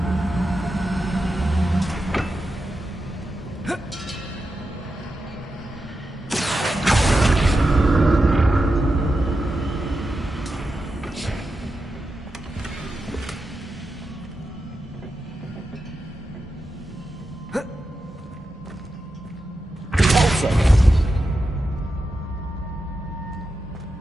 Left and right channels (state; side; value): normal; both; correlation 0.89